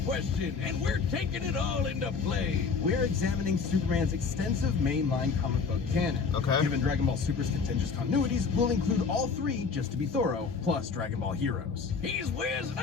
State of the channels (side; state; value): right; quieter; 5.2 dB